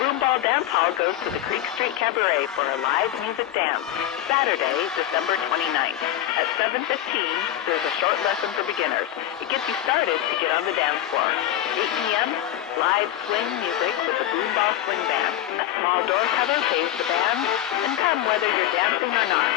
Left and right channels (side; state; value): right; quieter; 12.5 dB